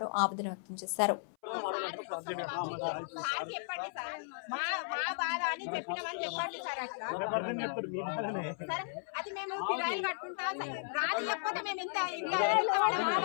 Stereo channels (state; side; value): silent; right; 54 dB below the other